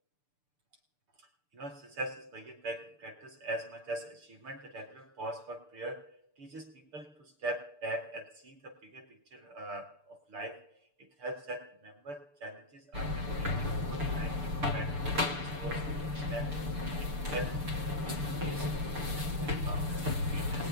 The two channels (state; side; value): late; left; 6.8 ms